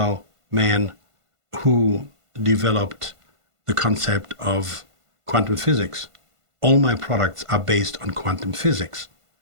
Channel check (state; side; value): late; left; 1.5 ms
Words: man who developed the concept of quantum physics. All my products are based on quantum physics.